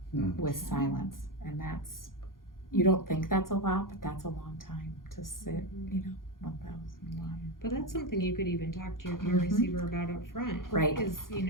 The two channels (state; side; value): late; right; 0.91 ms